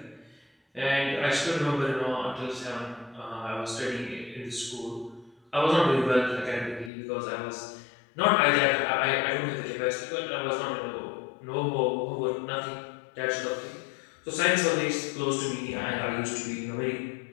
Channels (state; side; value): drops out; right; at 6.9 s